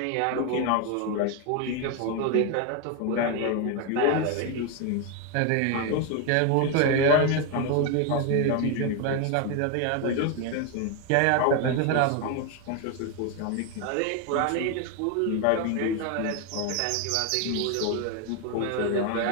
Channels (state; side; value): different; both; correlation 0.02